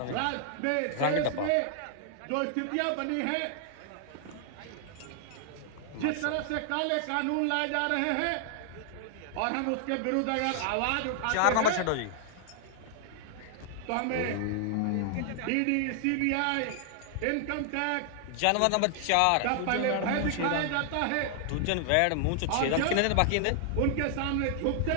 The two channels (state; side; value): different; both; correlation 0.00